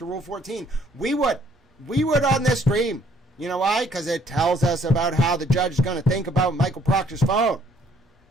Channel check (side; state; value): both; normal; correlation 0.63